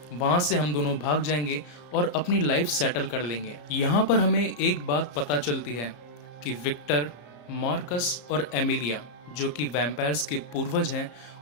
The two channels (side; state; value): right; late; 34 ms